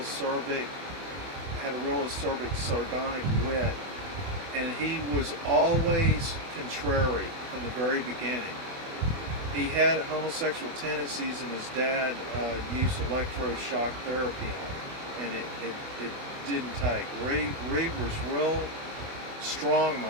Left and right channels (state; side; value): late; left; 24 ms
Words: acerbic, sardonic wit, and he was always contrary from the very beginning. He had homosexual tendencies, and his dad used electroshock therapy on him, and it didn't take. Reed was real